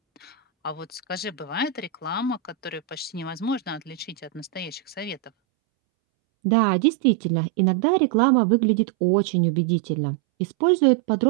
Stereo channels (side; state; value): left; drops out; at 5.3 s